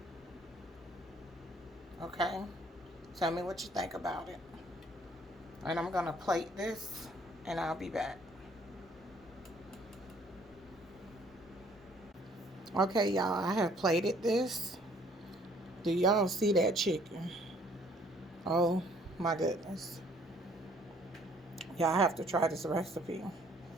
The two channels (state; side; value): normal; both; correlation 0.60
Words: Okay? Tell me what you think about it. And I'm going to plate this, and I'll be back. Okay, y'all, I have plated this. Do y'all see that chicken? Oh, my goodness. Y'all have to try this recipe.